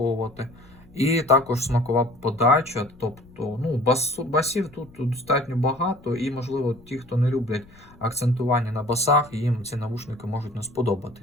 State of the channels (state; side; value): noise; left; rumble, 25 dB below the sound